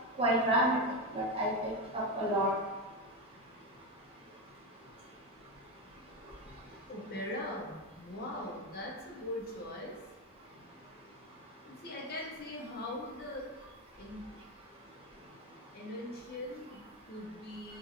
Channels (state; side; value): normal; both; correlation 0.13